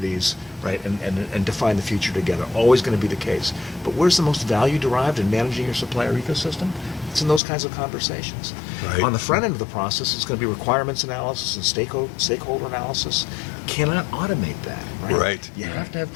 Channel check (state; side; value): drops out; right; at 7.4 s